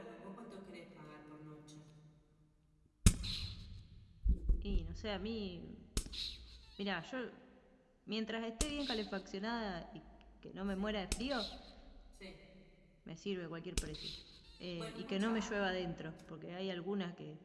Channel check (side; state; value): both; identical; correlation 1.00